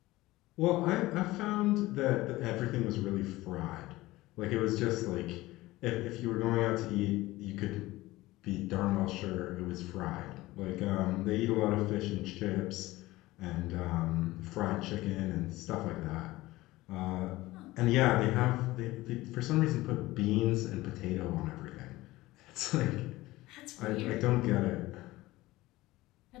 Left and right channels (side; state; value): right; quieter; 18.5 dB